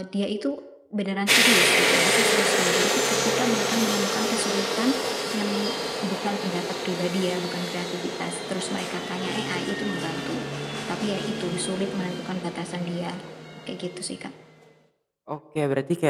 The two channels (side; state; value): both; identical; correlation 1.00